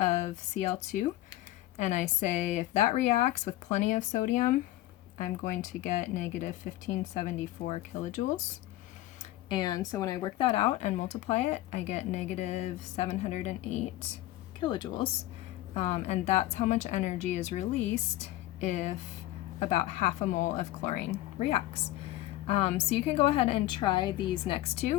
Cl2 and I say if that reacts with plenty of sodium, I'm going to get negative 1574 kilojoules. And so when I work that out and multiply it, I get negative 708 kilojoules. And that's how much energy is released if about half a mole of chlorine reacts. So you can go ahead and try these next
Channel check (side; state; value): right; quieter; 15.9 dB